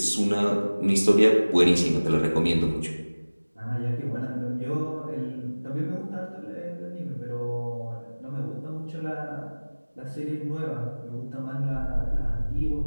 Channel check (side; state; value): both; inverted; correlation -1.00